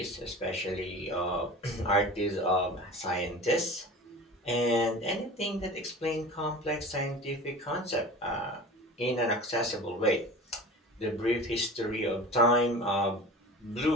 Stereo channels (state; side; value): normal; both; correlation 0.37